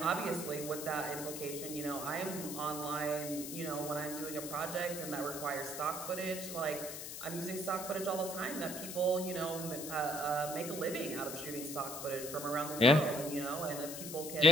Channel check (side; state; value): left; noise; hiss, 8 dB below the sound